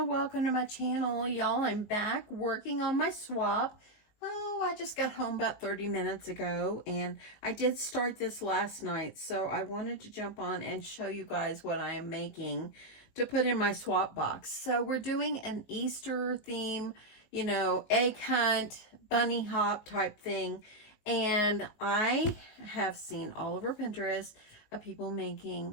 Welcome to my channel. Y'all, I'm back working on my swap. Oh, I just got home about 30 minutes ago and I did start this last night. So I wanted to jump on and show you guys what I am making to put in my swap box. So we're doing an Easter theme, egg hunt, bunny hop type thing. And I have seen all over Pinterest of people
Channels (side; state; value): right; late; 19 ms